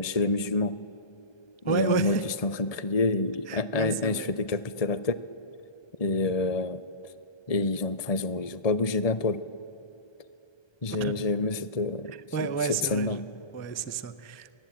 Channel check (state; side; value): late; right; 1.2 ms